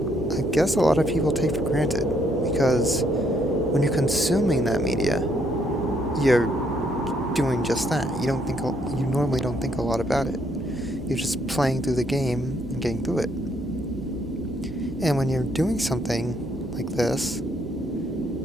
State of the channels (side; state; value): both; normal; correlation 0.71